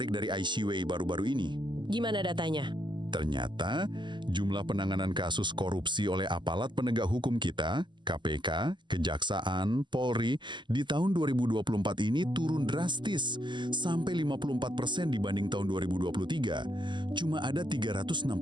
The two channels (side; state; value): left; late; 0.22 ms